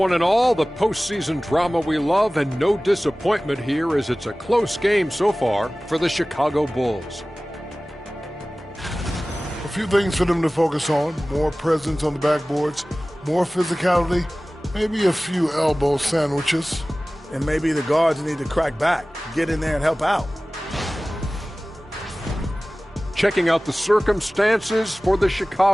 and all. The postseason drama we love, and no disappointment here as it's a close game so far for the Chicago Bulls. A few things for them to focus on. More presence on the backboards, more physicality, maybe a few elbow sandwiches. And maybe the guards need to crack back, get in there and help out. Checking out the circumstances for the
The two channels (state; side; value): normal; both; correlation 0.98